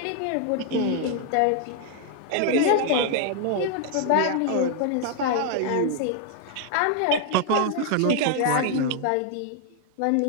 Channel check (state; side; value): different; both; correlation 0.00